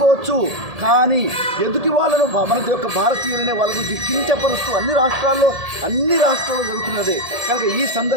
కానీ ఎదుటి వాళ్ళను మన యొక్క భారతీయులనే వాళ్ళ గురించి కించపరుస్తూ అన్ని రాష్ట్రాల్లో జరుగుతున్నదే. కనుక ఈ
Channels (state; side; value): late; left; 1.7 ms